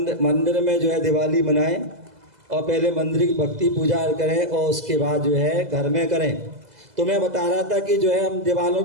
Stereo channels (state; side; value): late; left; 2.0 ms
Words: मंदिर में जो है दिवाली मनाएं, और पहले मंदिर की भक्ति पूजा करें, और उसके बाद जो है घर में करें। तो मैं बता रहा था कि जो है हम दीवारों